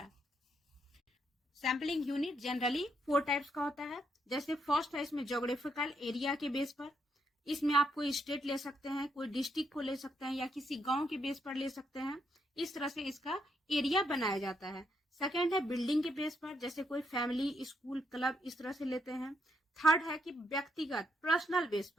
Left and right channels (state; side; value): normal; both; correlation 0.77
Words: सैम्पलिंग यूनिट जनरली 4 टाइप्स का होता है। जैसे फर्स्ट है इसमें ज्योग्राफिकल एरिया के बेस पर, इसमें आप कोई स्टेट ले सकते हैं, कोई डिस्ट्रिक्ट को ले सकते हैं या किसी गांव के बेस पर ले सकते हैं। इस तरह से इसका एरिया बनाया जाता है। सेकंड है बिल्डिंग के बेस पर, जैसे कोई फैमिली, स्कूल, क्लब, इस तरह से लेते हैं। थर्ड है कि व्यक्तिगत पर्सनल बेस